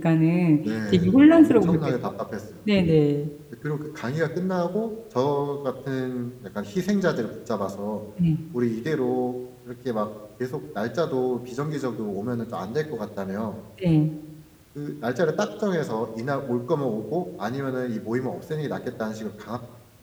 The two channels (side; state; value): both; identical; correlation 1.00